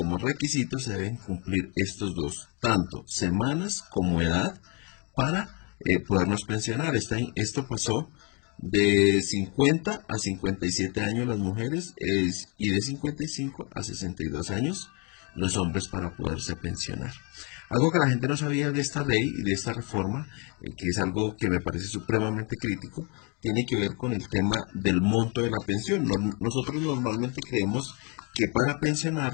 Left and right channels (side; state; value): right; quieter; 32.4 dB